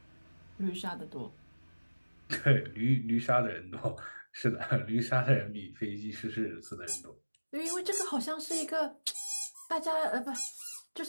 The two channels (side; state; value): both; inverted; correlation -1.00